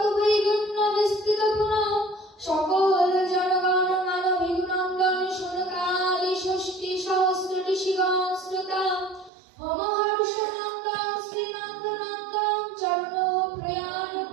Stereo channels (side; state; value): left; drops out; at 9.3 s